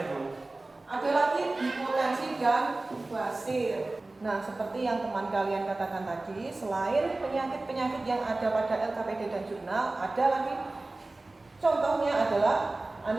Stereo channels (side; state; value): left; quieter; 3.0 dB